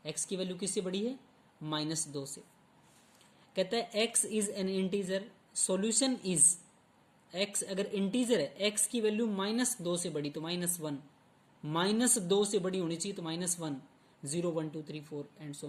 x की वैल्यू किससे बड़ी है, -2 से। कहता है x is an integer, solution is, x अगर इंटीजर है, x की वैल्यू -2 से बड़ी तो -1, -2 से बड़ी होनी चाहिए तो -1, 0 1 2 3 4 and so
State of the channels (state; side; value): identical; both; correlation 1.00